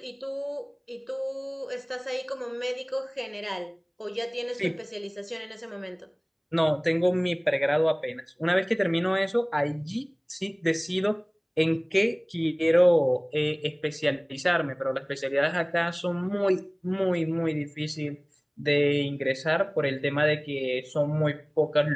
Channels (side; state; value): both; identical; correlation 1.00